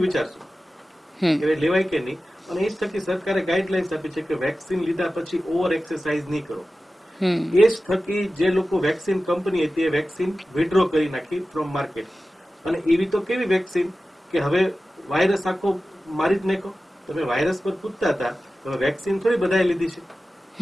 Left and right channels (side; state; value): both; normal; correlation 0.95